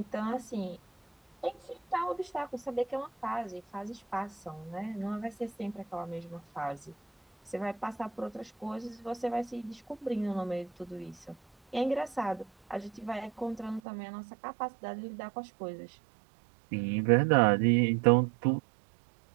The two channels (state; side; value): drops out; left; at 13.8 s